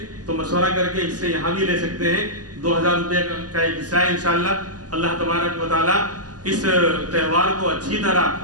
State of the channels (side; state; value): left; late; 0.68 ms